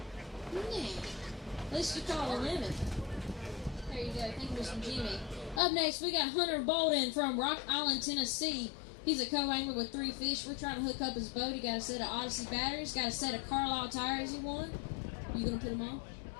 Yeah. At least you call a limit. There you go. Thank you, Mr. Jimmy. Up next, we got Hunter Bolden from Rock Island, Tennessee. He's a co-angler with 3 fish. We're trying to hook up his boat. He got a set of Odyssey batteries, got a set of Carlisle tires he won. You gonna put them on?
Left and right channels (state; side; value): drops out; right; at 5.6 s